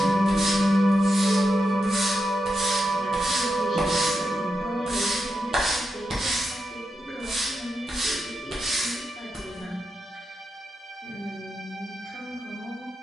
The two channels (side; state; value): both; normal; correlation 0.86